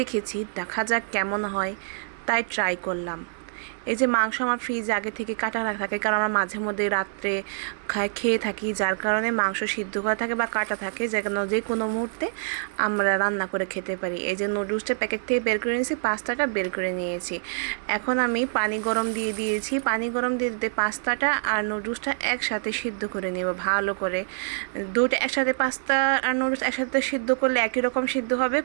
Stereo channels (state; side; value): silent; left; 61 dB below the other